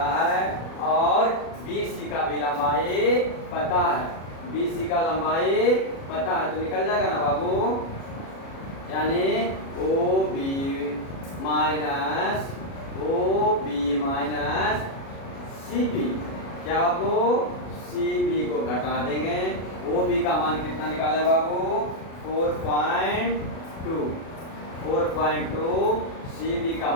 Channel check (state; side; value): late; right; 37 ms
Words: है और बी सी का भी लंबाई पता है। बी सी का लंबाई पता है तो निकल जाएगा ना बाबू, यानी O B minus C B. क्या बाबू? सी बी को घटा देंगे। ओ बी का मान कितना निकाले बाबू? 4.2। सी बी का